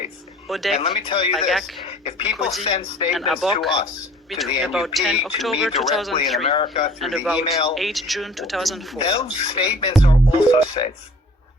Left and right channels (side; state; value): both; normal; correlation 0.50